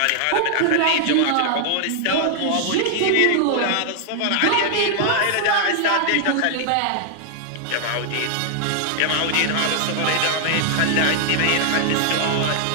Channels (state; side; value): different; both; correlation 0.00